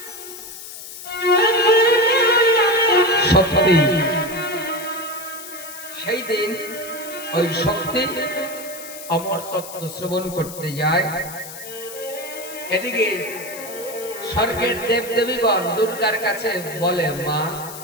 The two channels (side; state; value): left; noise; hiss, 13 dB below the sound